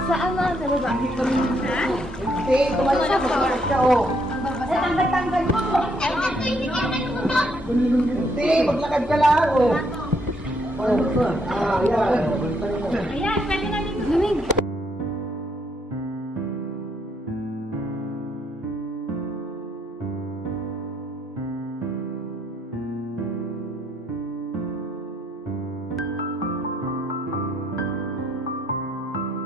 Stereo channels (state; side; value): normal; both; correlation 0.72